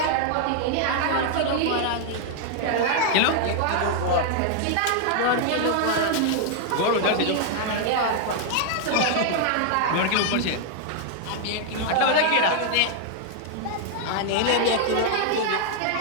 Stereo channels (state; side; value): different; both; correlation 0.00